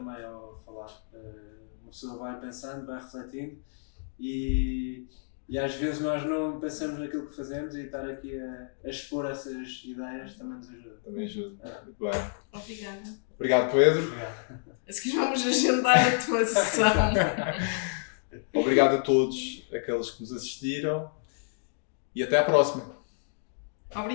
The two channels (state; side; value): silent; right; digital silence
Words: ao falar. Uma pessoa vai pensando, vai refletindo e às vezes nós não pensamos naquilo que fazemos e estar aqui a expor essas ideias também nos ajuda. Também ajuda. Muito bem. Obrigada. Obrigado, Pedro. Obrigado. A seguir vamos agendar a tua sessão. Obrigado a todos aqueles que nos assistiram e até à próxima.